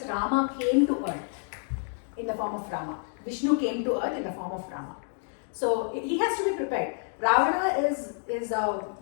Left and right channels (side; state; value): right; silent; 59 dB below the other